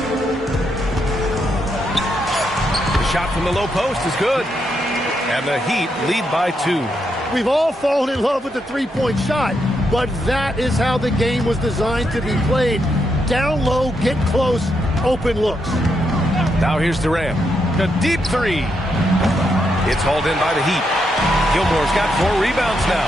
The shot from the low post is good. And the Heat lead by 2. We've all fallen in love with the three-point shot, but that is how the game was designed to be played. Down low, get close, open looks. Now here's Durant. A deep 3. It's hauled in by the Heat. Gilmore's got 4 rebounds now.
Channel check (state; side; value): normal; both; correlation 0.81